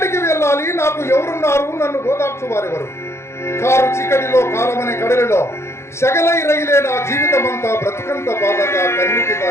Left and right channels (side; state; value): right; late; 0.13 ms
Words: వెళ్ళాలి? నాకు ఎవరున్నారు? నన్ను ఓదార్చు వారెవరు? కారు చీకటిలో కాలమనే కడలిలో సగలై రైలే నా జీవితమంతా బ్రతుకంత బాధగా కన్నికి